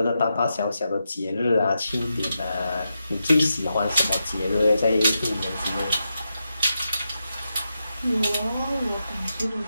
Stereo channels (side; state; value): both; inverted; correlation -0.87